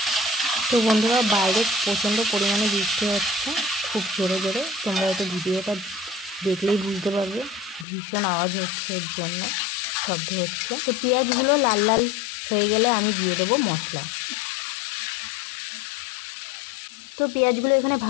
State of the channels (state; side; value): drops out; right; at 7.9 s